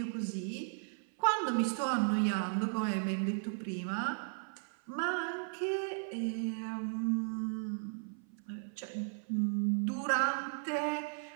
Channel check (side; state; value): left; silent; 54 dB below the other